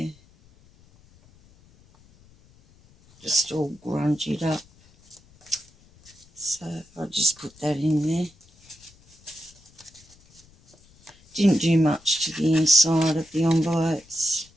Just all grungied up. So I'll just put that in there. Didn't do much to the inside of the envelopes.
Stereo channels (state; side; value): noise; left; rumble, 28 dB below the sound